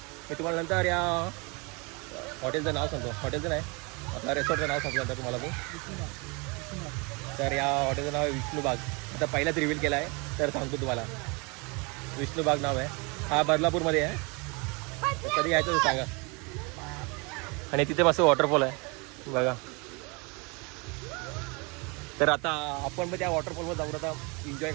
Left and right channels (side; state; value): left; quieter; 29.7 dB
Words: तुम्हाला नंतर या हॉटेलचं नाव सांगतो, हॉटेलचं नाही आपल्या रेसॉर्टचं नाव सांगतो नंतर तुम्हाला मी. तर या हॉटेलचं नाव आहे विष्णुबाग. आता पहिलाच रिव्हील केला आहे, तर सांगतो तुम्हाला. विष्णुबाग नाव आहे. हा बदलापूरमध्ये आहे. कधी यायचं तर सांगा. आणि तिथे मस्त वॉटरफॉल आहे बघा. तर आता आपण पण त्या वॉटरफॉलवर जाऊन आता एन्जॉय